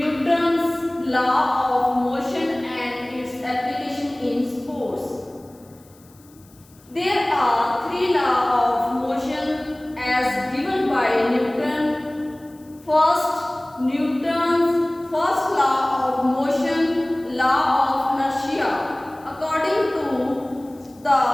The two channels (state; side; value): noise; left; hiss, 28 dB below the sound